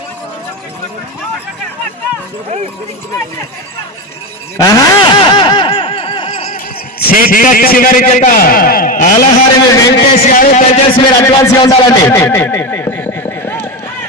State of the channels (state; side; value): normal; both; correlation 0.17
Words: చివరి జత ఆలహారి వెంకటేష్ గారు, దయచేసి మీరు అడ్వాన్స్ గా ఉండాలండి.